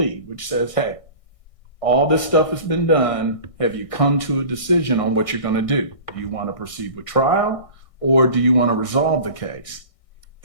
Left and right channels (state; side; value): late; right; 1.6 ms